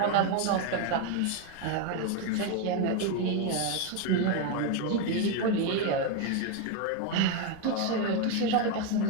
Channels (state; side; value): different; both; correlation 0.02